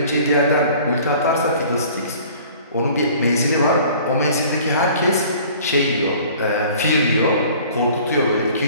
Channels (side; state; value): both; inverted; correlation -0.49